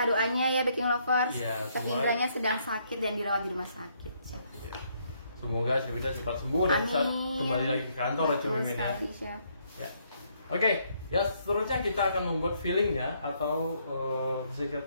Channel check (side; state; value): both; inverted; correlation -0.71